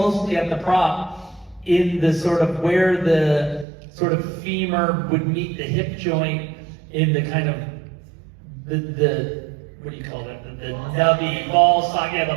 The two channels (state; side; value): drops out; left; at 3.7 s